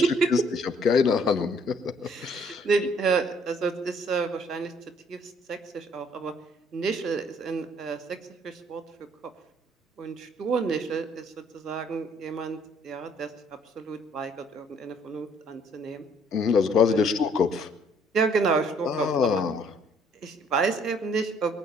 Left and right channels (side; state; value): both; normal; correlation 0.62